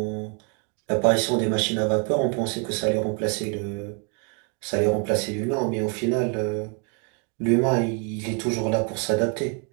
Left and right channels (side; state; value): left; quieter; 38.2 dB